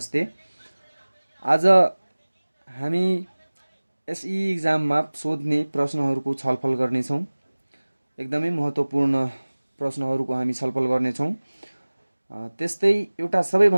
आज हामी एसई एक्जाममा सोध्ने प्रश्नहरूको छलफल गर्नेछौँ। एकदमै महत्त्वपूर्ण प्रश्नहरूको हामी छलफल गर्नेछौँ। त्यस्तै एउटा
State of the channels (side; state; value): both; inverted; correlation -1.00